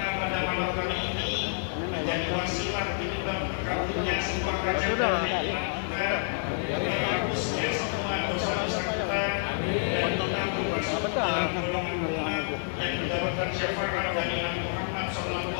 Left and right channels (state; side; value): silent; right; digital silence